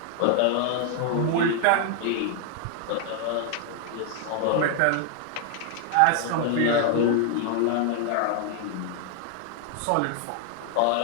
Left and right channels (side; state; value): both; different; correlation 0.00